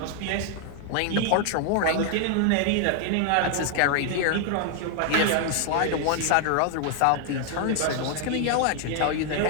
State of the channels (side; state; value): both; different; correlation 0.00